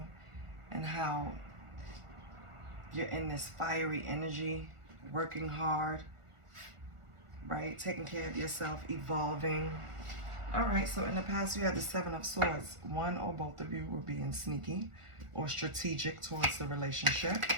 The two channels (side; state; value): left; late; 1.4 ms